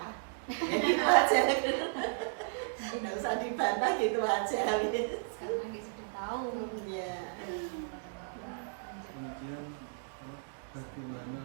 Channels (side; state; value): left; silent; digital silence